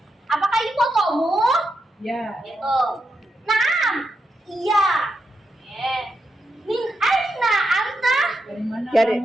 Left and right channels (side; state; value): both; normal; correlation 0.85